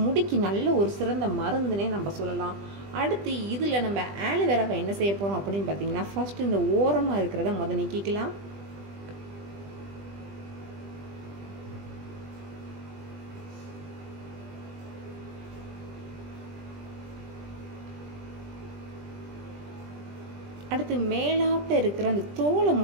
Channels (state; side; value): late; left; 20 ms